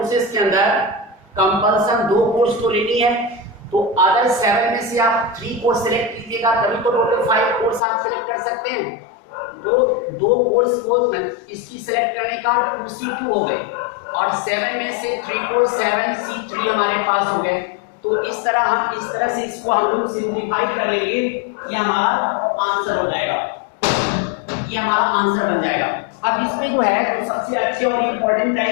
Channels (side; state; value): right; drops out; at 7.8 s